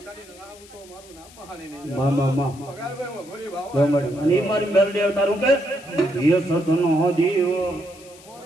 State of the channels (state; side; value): noise; left; hiss, 22 dB below the sound